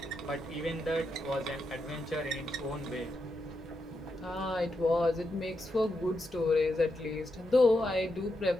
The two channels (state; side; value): normal; both; correlation 0.84